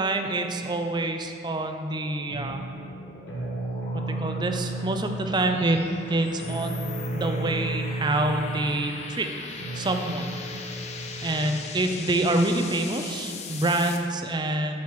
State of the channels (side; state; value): both; normal; correlation 0.49